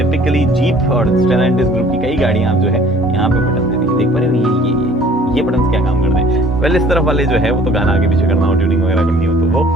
jeep और स्टेलैंटिस ग्रुप की कई गाड़ियाँ आप जो है यहाँ पे बटन देती है, देख पा रहे हो ये बटन क्या काम करते हैं। वेल, इस तरफ वाले जो है वो तो गाना आगे पीछे करना हो, ट्यूनिंग वगैरह करनी हो तो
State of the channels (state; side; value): normal; both; correlation 0.53